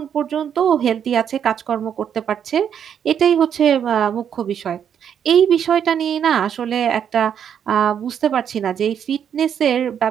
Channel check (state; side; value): quieter; left; 8.5 dB